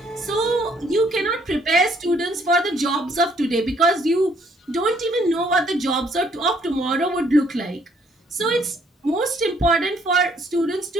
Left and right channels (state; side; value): normal; both; correlation 0.66